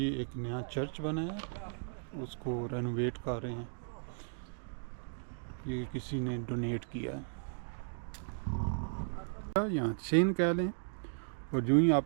एक नया चर्च बना है, उसको रेनोवेट कर रहे हैं, ये किसी ने डोनेट किया है, यहाँ चेन कह लें। और जो ही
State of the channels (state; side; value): silent; left; digital silence